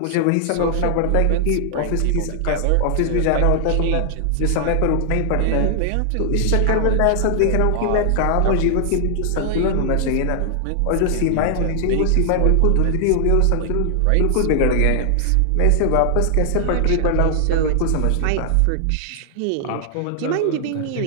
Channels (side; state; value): both; different; correlation 0.00